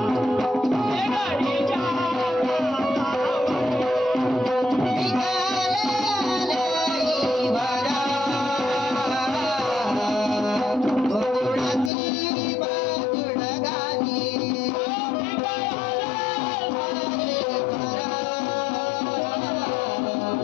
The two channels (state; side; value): drops out; right; at 11.9 s